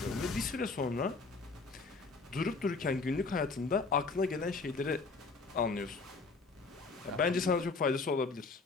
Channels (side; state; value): right; quieter; 4.1 dB